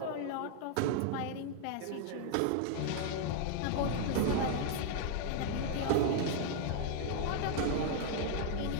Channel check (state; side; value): different; both; correlation 0.00